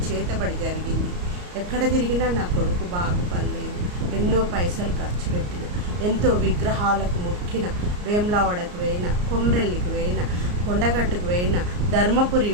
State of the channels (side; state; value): left; late; 34 ms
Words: చేతబడి జరిగింది. ఎక్కడ తిరిగినా నా కొడుకు బాగుపడలేదు. ఎన్నో పైసలు ఖర్చు పెట్టిన, ఎంతో విగ్రహాలకు మొక్కిన, వేములవాడకు పోయిన, కొమ్రెల్లికి పోయిన, కొండగట్టుకు పోయిన, ధర్మపురి